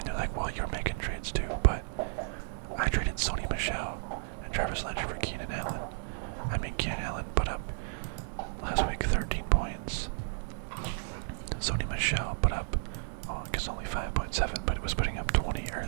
they're like, well, you're making trades too, but I traded Sony Michel and Travis Landry for Keenan Allen. Keenan Allen put up last week 13 points. Sony Michel put up, I guess only 5.7, but it was putting up 20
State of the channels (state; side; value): silent; left; digital silence